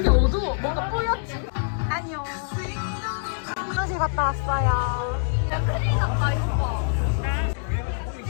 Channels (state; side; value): silent; right; digital silence